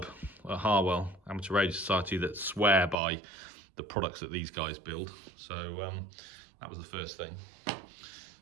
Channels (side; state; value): left; drops out; at 3.0 s